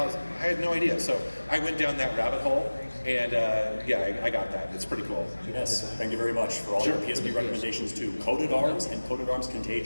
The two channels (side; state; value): both; inverted; correlation -1.00